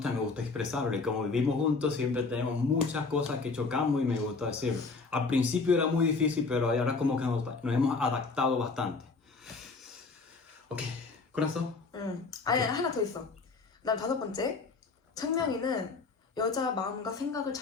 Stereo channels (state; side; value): quieter; right; 4.2 dB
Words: expresarlo. Y como vivimos juntos, siempre tenemos muchas cosas que chocamos y me gusta decirlo. Al principio era muy difícil, pero ahora como que nos hemos adaptado bastante. Ok, corazón. 아니, 하나 더 있어. 그다음 다섯 번째, 창명이는 여자 마음과 생각을